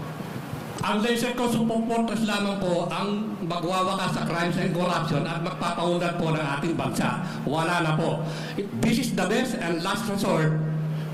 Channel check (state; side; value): identical; both; correlation 1.00